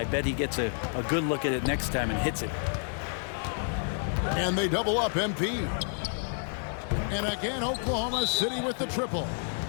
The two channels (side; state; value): right; silent; 58 dB below the other